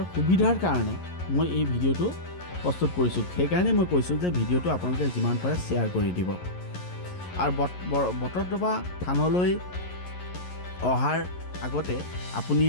সুবিধাৰ কাৰণে মই এই ভিডিঅ'টো প্ৰস্তুত কৰিছোঁ। সেইকাৰণে মই কৈছোঁ যে ভিডিঅ'টো আপোনালোকে যিমান পাৰে শ্বেয়াৰ কৰি দিব। আৰু বটদ্ৰৱা থানলৈ অহাৰ আগতে আপুনি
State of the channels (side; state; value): right; late; 11 ms